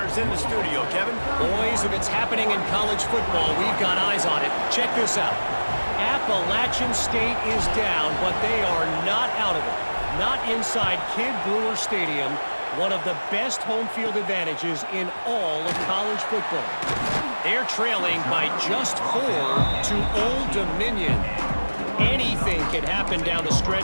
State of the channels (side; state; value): both; inverted; correlation -1.00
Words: in the studio. Kevin? Boys, if it's happening in college football, we've got eyes on it. Check this out. Appalachian State is down, but they are not out of it. Not inside Kid Brewer Stadium. One of the best home field advantages in all of college football. They're trailing by just 4 to Old Dominion. Anything can happen down the